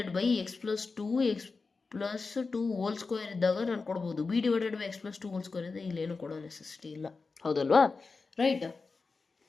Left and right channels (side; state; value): right; quieter; 4.3 dB